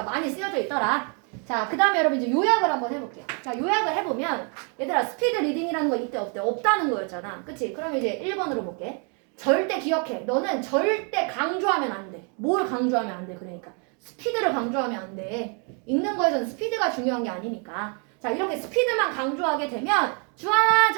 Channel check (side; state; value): left; quieter; 38.1 dB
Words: 많이 쓰여져 있더라. 자, 그 다음에 여러분 이제 요약을 한번 해볼게요. 자, 요약을 해보면 얘들아 스피드 리딩이라는 거 이때 없대. 없다는 거였잖아. 그치? 그럼 이제 1번으로 볼게. 절대 기억해. 너는 절대 강조하면 안 돼. 뭘 강조하면 안 돼? 그러니까 스피드를 강조하면 안 돼. 읽는 거에서는 스피드가 중요한 게 아니니까. 자, 이렇게 스피드만 강조하게 되면 주하나